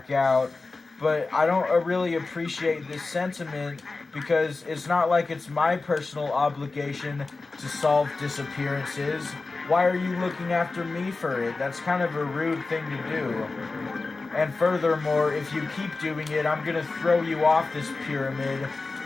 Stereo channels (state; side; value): quieter; right; 3.7 dB